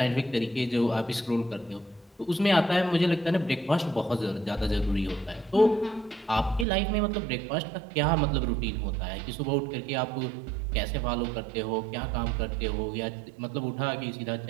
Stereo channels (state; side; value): drops out; left; at 6.7 s